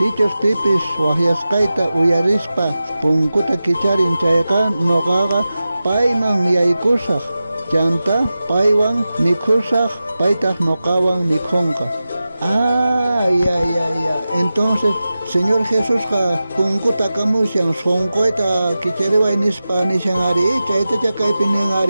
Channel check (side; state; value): both; inverted; correlation -0.94